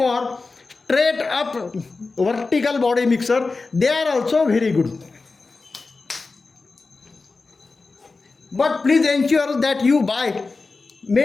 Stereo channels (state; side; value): quieter; right; 3.9 dB